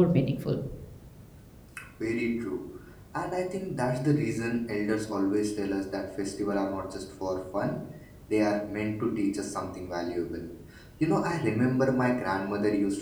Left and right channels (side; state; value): both; identical; correlation 1.00